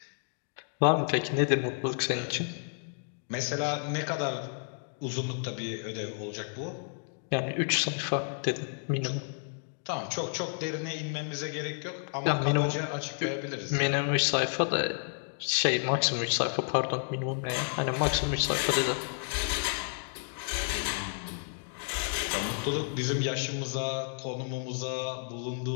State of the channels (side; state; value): right; silent; 57 dB below the other